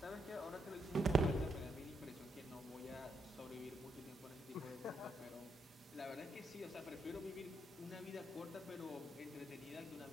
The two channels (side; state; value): both; normal; correlation 0.78